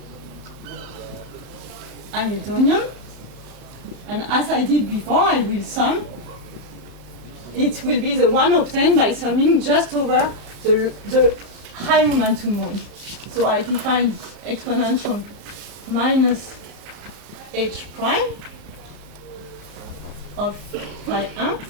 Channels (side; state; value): left; late; 34 ms